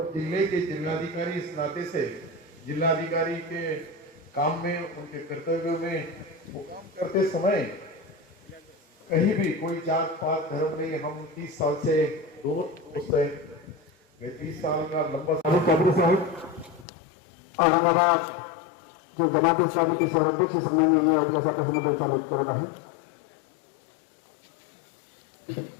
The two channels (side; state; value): right; drops out; at 16.9 s